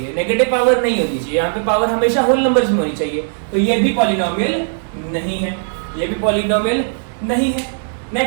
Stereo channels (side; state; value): left; silent; digital silence